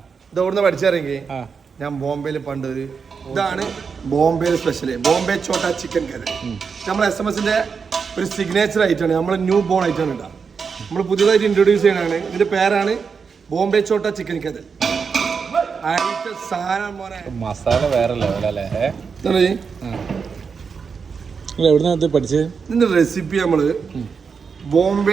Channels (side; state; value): left; quieter; 5.7 dB